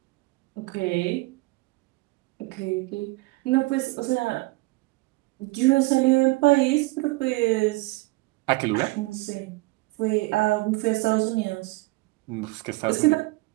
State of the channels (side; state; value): left; quieter; 22.8 dB